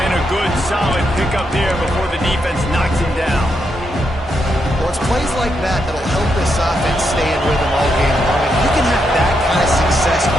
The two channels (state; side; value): normal; both; correlation 0.81